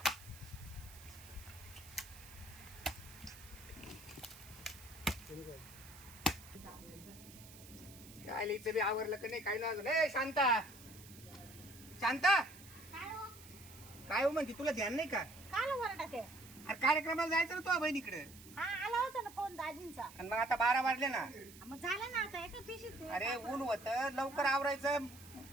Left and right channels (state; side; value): noise; right; hiss, 18 dB below the sound